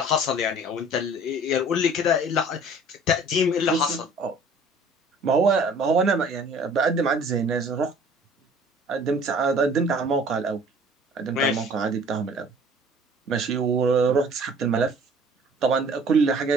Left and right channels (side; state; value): both; normal; correlation 0.50